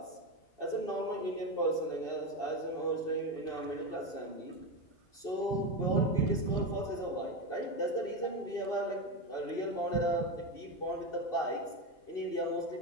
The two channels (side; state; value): right; late; 2.7 ms